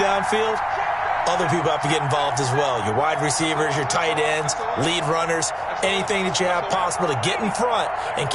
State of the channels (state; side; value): identical; both; correlation 1.00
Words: other people have to get involved as well. Your wide receivers, your tight ends, lead runners, anything that you have possible to get in front and